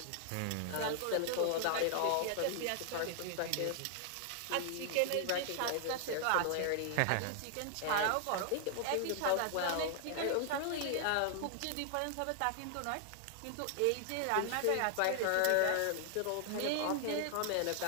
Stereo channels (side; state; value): both; different; correlation 0.00